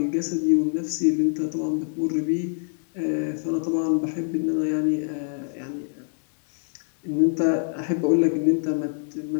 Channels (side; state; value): right; silent; 62 dB below the other